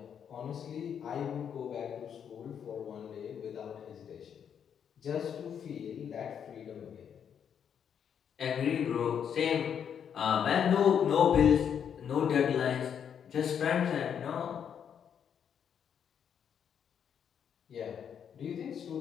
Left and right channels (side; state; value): right; quieter; 8.1 dB